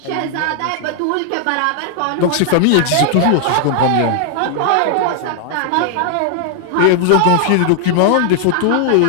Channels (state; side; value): different; both; correlation 0.00